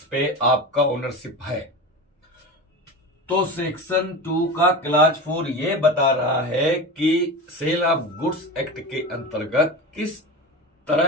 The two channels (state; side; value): normal; both; correlation 0.27